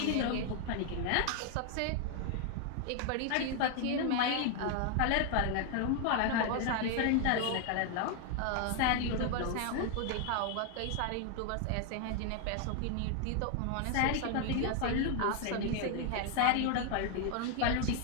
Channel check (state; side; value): different; both; correlation 0.00